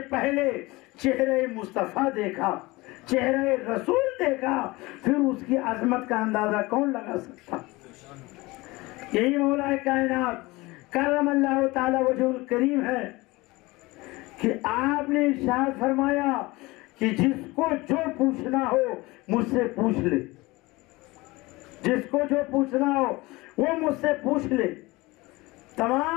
پہلے چہرے مصطفیٰ دیکھا، چہرے رسول دیکھا، پھر اس کی عظمت کا اندازہ کون لگا سکتا. یہی مولا کائنات کرم اللہ تعالی وجہ الکریم ہے کہ آپ نے ارشاد فرمایا کہ جس کو جو پوچھنا ہو مجھ سے پوچھ لے، جس کو جو پوچھنا ہو وہ مجھ سے پوچھ لے.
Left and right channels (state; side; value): quieter; right; 21.9 dB